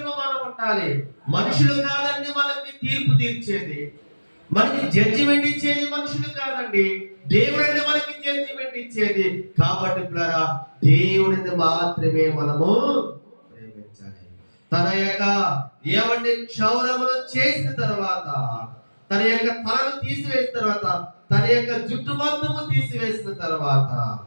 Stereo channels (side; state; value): both; inverted; correlation -1.00